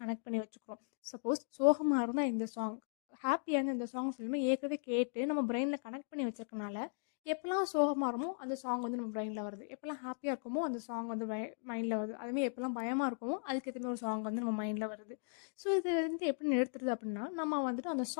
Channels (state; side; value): silent; right; digital silence